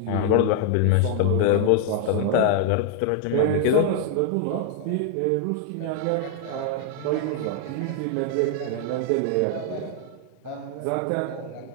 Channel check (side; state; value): both; different; correlation 0.00